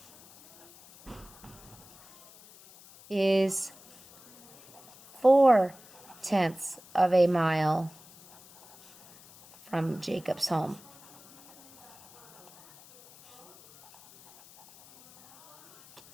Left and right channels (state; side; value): noise; left; hiss, 23 dB below the sound